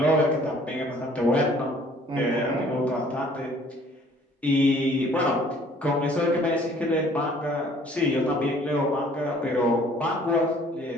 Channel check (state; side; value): normal; both; correlation 0.56